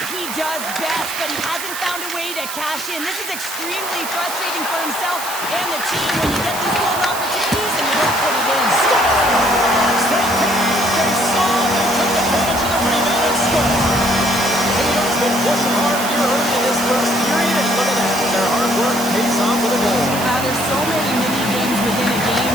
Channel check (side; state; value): right; noise; hiss, 8 dB below the sound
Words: he does best, but he hasn't found a way to cash in. This is extremely frustrating for himself and the team when you get these golden opportunities and you don't put it in. Scores! They came, they saw, they took advantage of the rebound and scored. Tatum's been pushing hard here early in this first period, and look at that. Their hard work pays off with a goal. There's so many mini-games within a